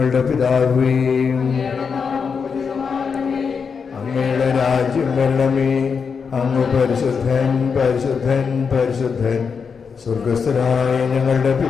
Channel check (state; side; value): quieter; right; 5.9 dB